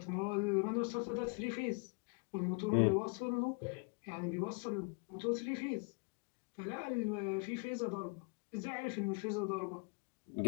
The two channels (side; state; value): right; quieter; 34.0 dB